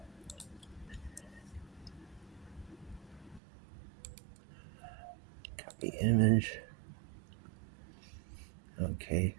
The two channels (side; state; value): left; drops out; at 3.4 s